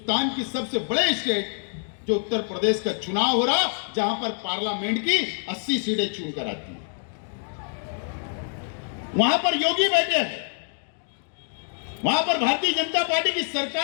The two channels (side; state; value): right; silent; 59 dB below the other